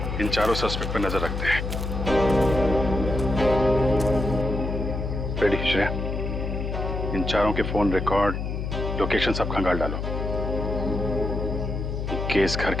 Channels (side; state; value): left; noise; hum, 3 dB below the sound